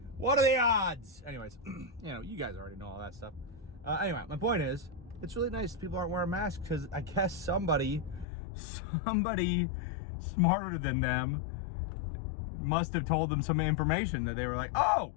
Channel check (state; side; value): drops out; right; at 8.2 s